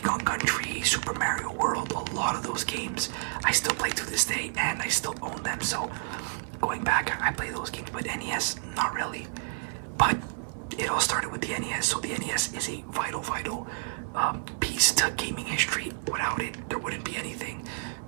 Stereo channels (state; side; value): silent; left; 58 dB below the other